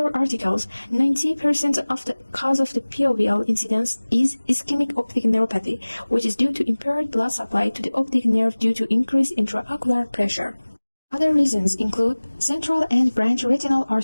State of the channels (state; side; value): inverted; both; correlation -1.00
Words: articles, 90% of the cause of the POVL incidence is ischemic optic neuropathy, which is due to impaired blood supply to the optic nerve due to increased intraocular pressure. Other reasons include central and branch retinal